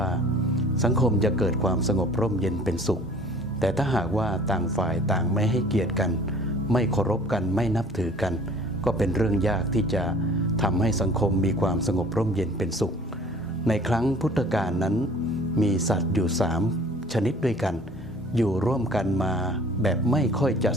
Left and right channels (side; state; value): both; normal; correlation 0.50